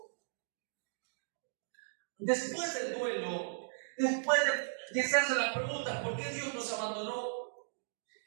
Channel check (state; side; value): silent; left; digital silence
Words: Después del duelo, después de hacerse la pregunta, ¿por qué Dios nos abandonó?